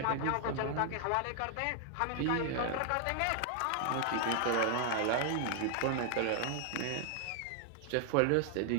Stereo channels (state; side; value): different; both; correlation 0.00